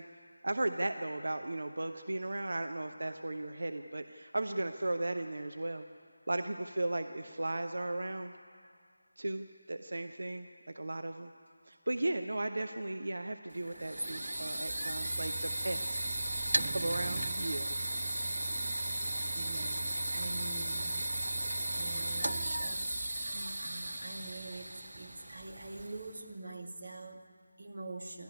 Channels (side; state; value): both; inverted; correlation -0.97